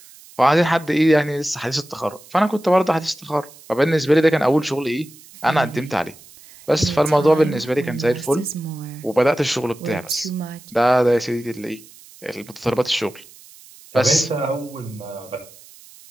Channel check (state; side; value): noise; right; hiss, 22 dB below the sound